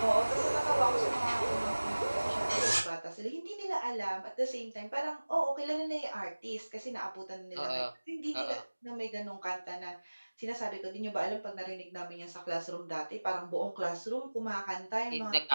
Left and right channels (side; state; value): both; inverted; correlation -1.00